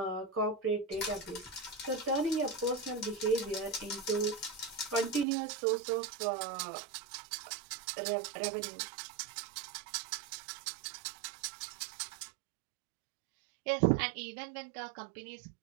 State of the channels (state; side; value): drops out; left; at 5.2 s